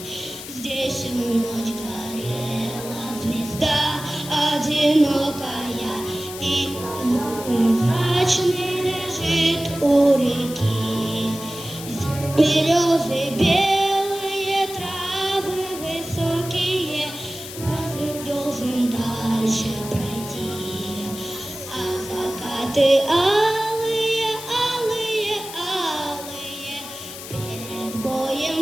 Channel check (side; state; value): left; noise; hiss, 11 dB below the sound